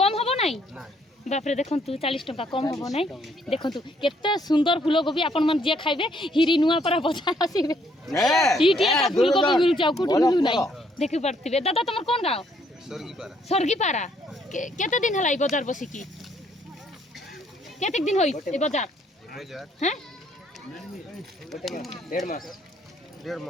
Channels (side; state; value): both; normal; correlation 0.68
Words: हबो नाही बाप रे देखंतु 40 टंका कम हबो नाही देखंतु केते सुंदर फूलकोबी आपण मन जे खाइबे हिरी नुआपारा बाजार आसीबे इटी एटा फूलकोबी मिल जाऊ कुटी मिलु नाही देखि पड़तिबे दादा तमर कोन गांव सरगीपारा केते दिन हलाई बाजार बसी की केते दिन होई ए बाजार हैं